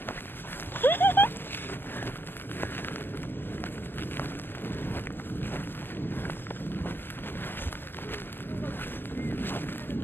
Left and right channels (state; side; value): late; right; 0.096 ms